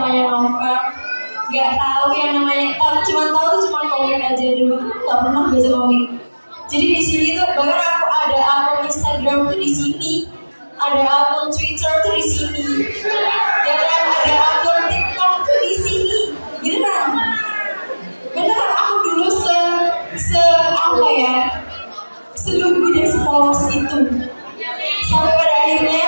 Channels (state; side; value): inverted; both; correlation -1.00